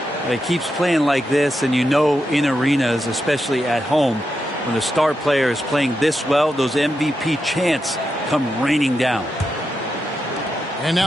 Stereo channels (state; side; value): normal; both; correlation 0.86